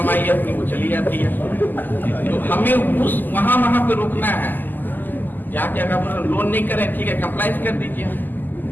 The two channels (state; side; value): late; right; 0.088 ms